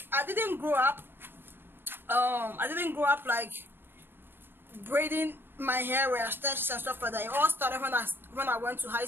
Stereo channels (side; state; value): left; late; 0.10 ms